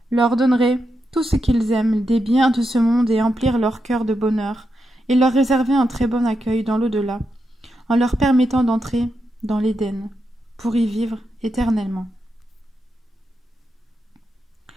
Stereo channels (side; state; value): both; normal; correlation 0.85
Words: leur donnerait tout ce qu'ils aiment, des biens de ce monde et emplir leur cœur de bonheur, et leur réserver un très bon accueil dans l'au-delà, en leur permettant d'entrer dans l'Éden, pour y vivre éternellement.